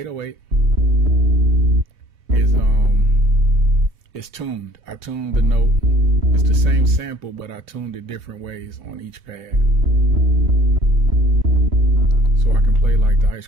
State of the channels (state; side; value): late; left; 3.0 ms